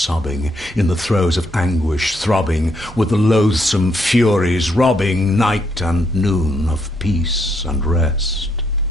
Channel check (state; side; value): normal; both; correlation 0.75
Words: in the throes of anguish throbbing, with the loathsome furies robbing night and noon of peace and rest.